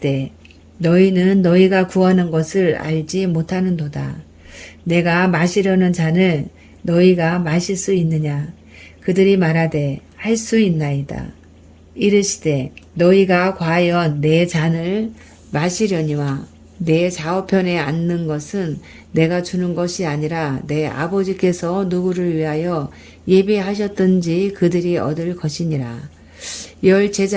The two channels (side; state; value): both; identical; correlation 1.00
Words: 너희는 너희가 구하는 것을 알지 못하는도다. 내가 마시려는 잔을 너희가 마실 수 있느냐. 그들이 말하되 할 수 있나이다. 이르시되 너희가 과연 내 잔을 마시려니와 내 좌우편에 앉는 것은 내가 주는 것이 아니라 내 아버지께서 누구를 위하여 예비하셨든지 그들이 얻을 것이니라. 10